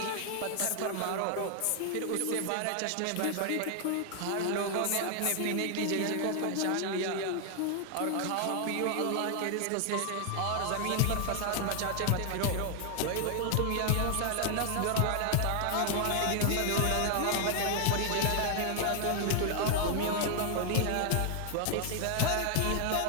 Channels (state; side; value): different; both; correlation 0.00